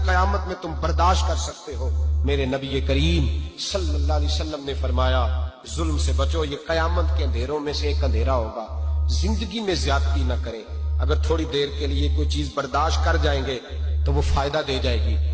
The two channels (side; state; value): both; identical; correlation 1.00